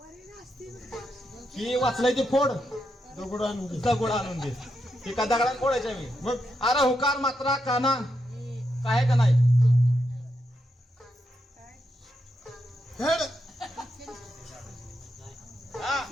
ही वाचलंय ते फोड. दगड आणून दे. दगड आणून दे. ती का दगडात फोडायच्या मी? मग अरे हुकार मात्रा काना काय का नाही? हेड हा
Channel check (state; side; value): normal; both; correlation 0.83